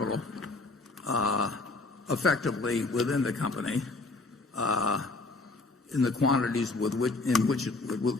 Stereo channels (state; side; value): quieter; right; 3.4 dB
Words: effectively within the company in the quantities with